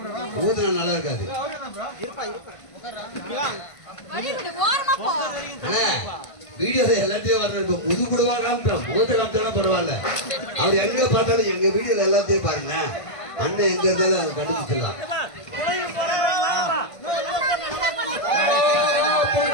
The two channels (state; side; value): late; right; 1.5 ms